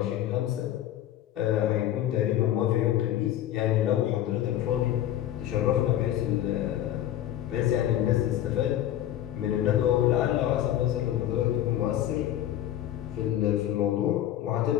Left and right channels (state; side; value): quieter; right; 12.3 dB